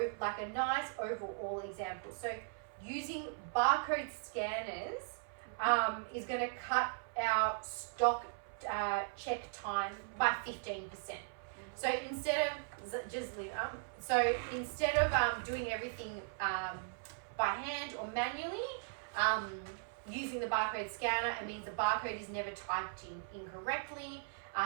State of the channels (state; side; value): silent; left; 52 dB below the other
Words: nice overall example. So using barcode scanners is going to cut our stock check time by 15%. So instead of doing everything by hand or manually, using the barcode scanner, it means the barcode is never typed in incorrectly.